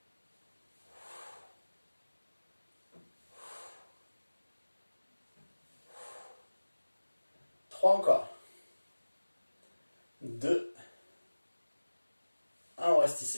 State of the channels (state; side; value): inverted; both; correlation -1.00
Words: Trois encore. 2. 1, on reste